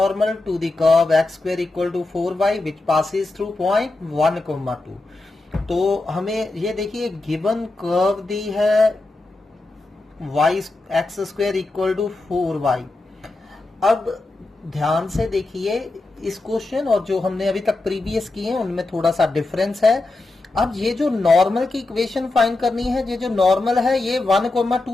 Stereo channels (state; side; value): quieter; right; 3.1 dB